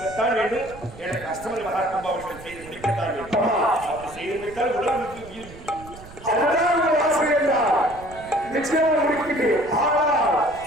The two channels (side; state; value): right; noise; rumble, 18 dB below the sound